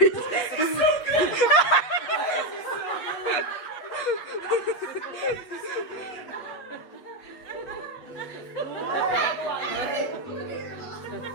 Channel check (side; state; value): right; late; 8.3 ms